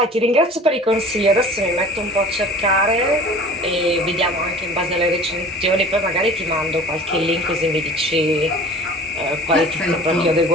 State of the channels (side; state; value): both; normal; correlation 0.43